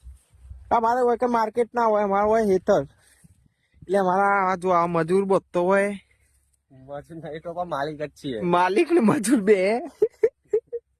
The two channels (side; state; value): both; identical; correlation 1.00